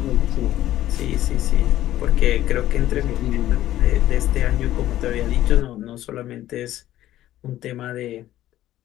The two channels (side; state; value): right; quieter; 13.7 dB